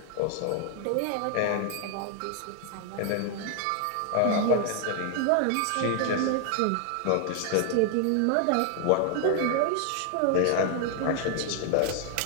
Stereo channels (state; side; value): different; both; correlation 0.00